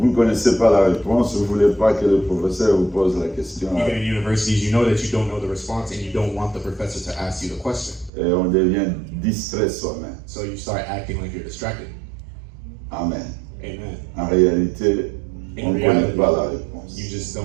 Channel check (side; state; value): left; drops out; at 8.1 s